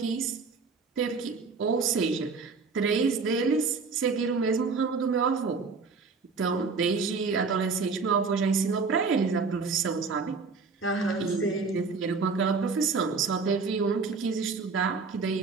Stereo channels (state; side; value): quieter; left; 4.7 dB